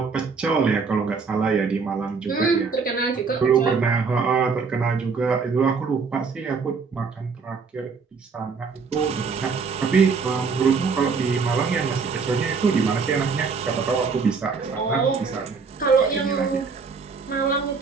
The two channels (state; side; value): quieter; left; 5.1 dB